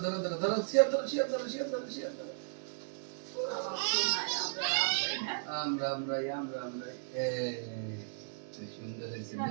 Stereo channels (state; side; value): silent; left; digital silence